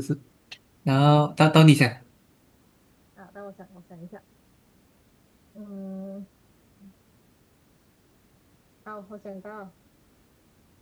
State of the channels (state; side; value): identical; both; correlation 1.00